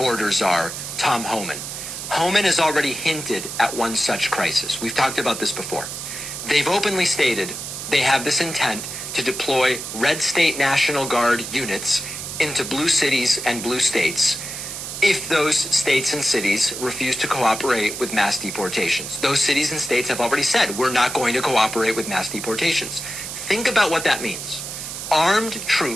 czar, Tom Homan. Homan has already hinted at one such crisis. We've talked about this before. They've openly stated they have this intent to deploy red state National Guard units into blue cities and blue states if those states and cities refuse to cooperate with mass deportations. Those cities and states have already said, we're not going to cooperate with mass deportations. Think about what that means. Armed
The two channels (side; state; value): right; noise; hiss, 7 dB below the sound